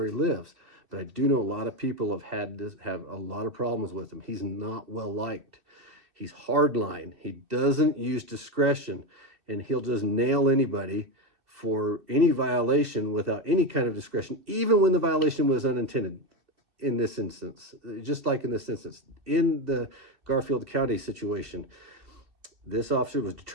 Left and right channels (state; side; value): late; left; 2.7 ms